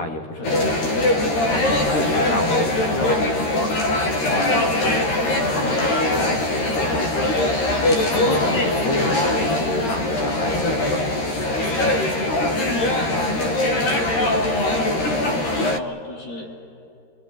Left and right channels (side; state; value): right; late; 13 ms